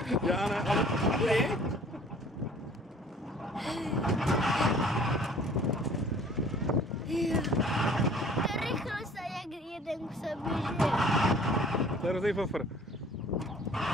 Já ne, ale ty? To rychlost a jak jeden k sobě žije. To je hrozný fofr.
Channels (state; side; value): normal; both; correlation 0.51